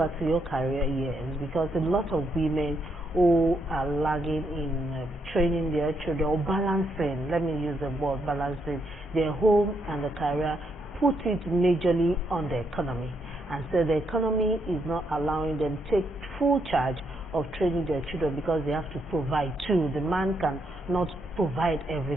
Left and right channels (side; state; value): both; normal; correlation 0.77